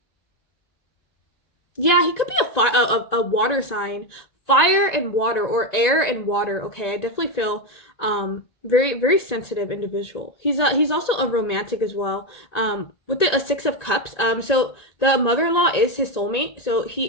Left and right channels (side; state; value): right; late; 1.9 ms